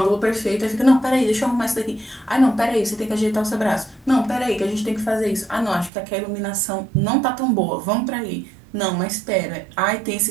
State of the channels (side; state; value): left; drops out; at 5.9 s